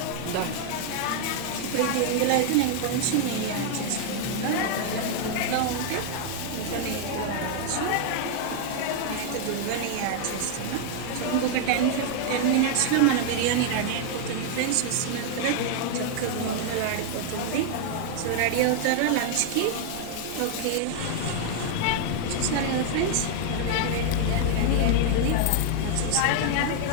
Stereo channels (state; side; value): different; both; correlation 0.00